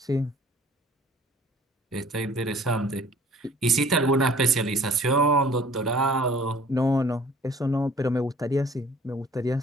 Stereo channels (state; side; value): normal; both; correlation 0.53